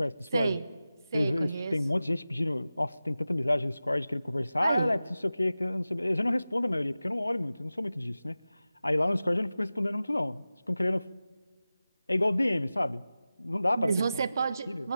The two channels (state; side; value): inverted; both; correlation -0.95